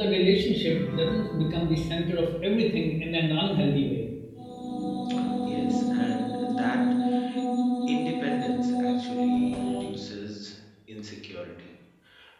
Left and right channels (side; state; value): both; identical; correlation 1.00